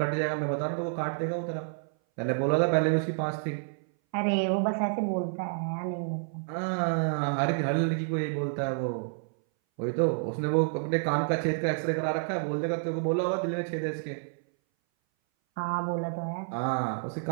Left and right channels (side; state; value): left; silent; 58 dB below the other